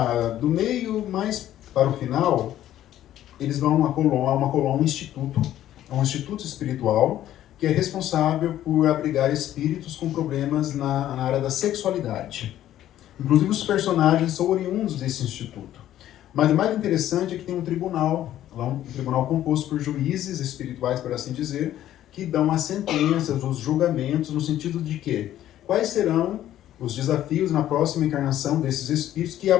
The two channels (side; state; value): right; quieter; 12.5 dB